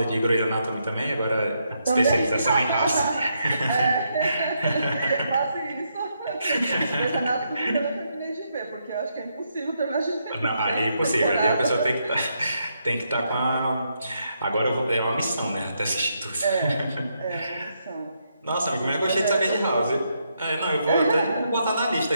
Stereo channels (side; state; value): both; inverted; correlation -0.79